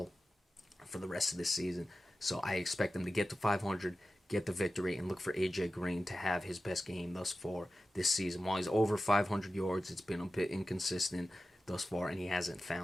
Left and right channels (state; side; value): normal; both; correlation 0.94